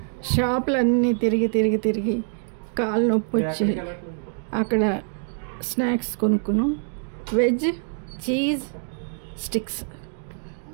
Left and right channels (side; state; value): left; silent; digital silence